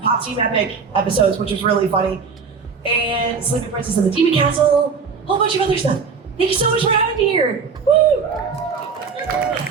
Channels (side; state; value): left; quieter; 5.5 dB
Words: Pop Team Epic episodes, which was really funny. And Sleeping Princess in the Demon Castle. A whole bunch of other stuff. Thank you so much for having me here. Woo!